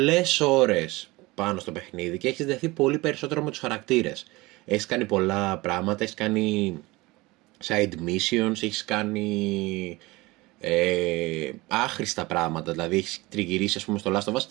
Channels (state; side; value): quieter; left; 21.8 dB